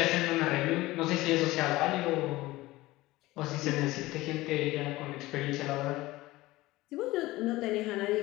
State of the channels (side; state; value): right; quieter; 18.7 dB